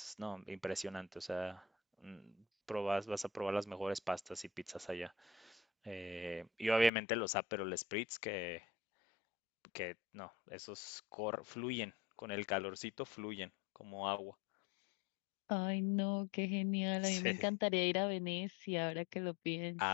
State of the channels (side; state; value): right; drops out; at 6.9 s